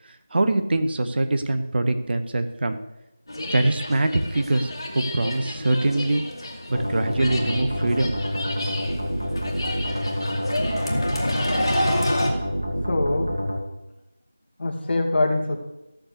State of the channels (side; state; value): both; inverted; correlation -0.94